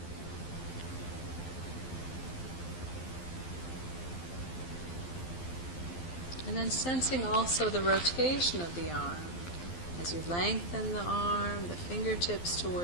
And then sensing also the rotation of the arm. As you lengthen the arm, the fingertips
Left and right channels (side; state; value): right; late; 12 ms